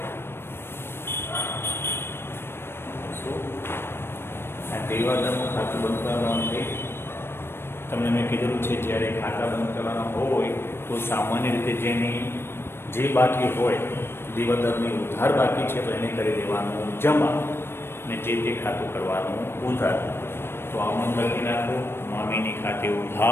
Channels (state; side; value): late; right; 0.11 ms